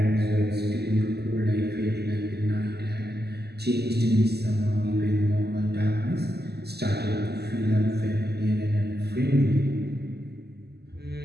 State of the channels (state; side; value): late; left; 0.47 ms